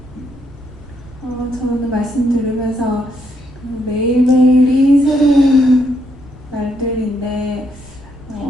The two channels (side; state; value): both; normal; correlation 0.75